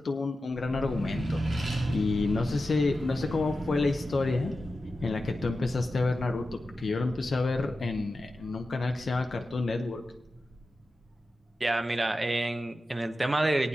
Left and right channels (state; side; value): normal; both; correlation 0.92